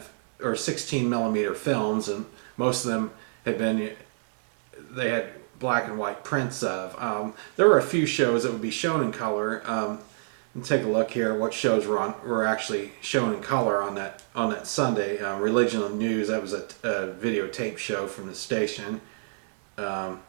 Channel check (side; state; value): left; silent; digital silence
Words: millimeter films, and most of them they had black and white prints of. There were a few shows that would be shown in color. And take a look here. What shows were actually shown in color on that Sunday. Religion and News. That was a videotape show from the station.